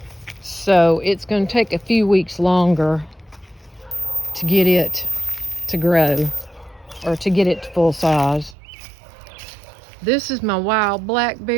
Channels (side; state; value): left; drops out; at 8.6 s